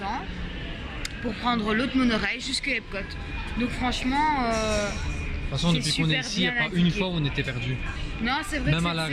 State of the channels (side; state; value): both; identical; correlation 1.00